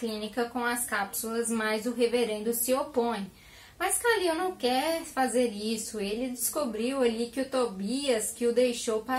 com as cápsulas, mas o reverendo se opõe. Mas Khalil não quer fazer isso. Ele descobriu ali que o Tobias que o deixou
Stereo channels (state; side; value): identical; both; correlation 1.00